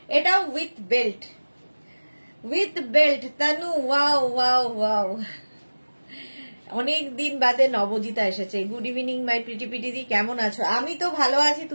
এটাও with belt, with belt. Tanu wow wow wow, অনেক দিন বাদে নবজিতা এসেছে। গুড ইভিনিং মাই প্রিটি পিটিদি, কেমন আছো? আমি তো ভালো আছি,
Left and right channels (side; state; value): both; inverted; correlation -1.00